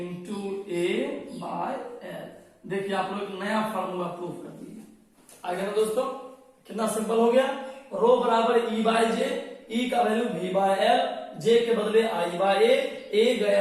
A/L। देखिए आप लोग एक नया फार्मूला प्रूव कर दिए। आगे ना दोस्तों, कितना सिंपल हो गया। रो बराबर E/J, E का वैल्यू V/L, J के बदले I/A, A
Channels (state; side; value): identical; both; correlation 1.00